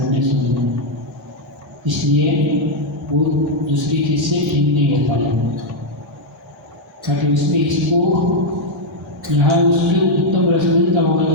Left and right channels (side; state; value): both; normal; correlation 0.00